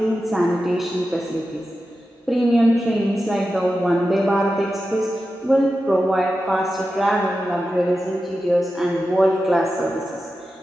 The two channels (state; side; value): normal; both; correlation 0.92